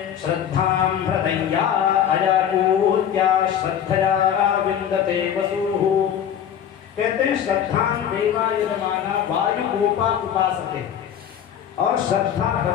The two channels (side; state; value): right; quieter; 9.2 dB